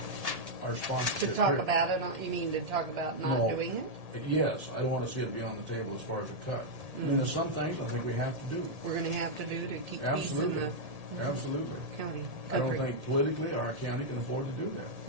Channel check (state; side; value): late; left; 1.8 ms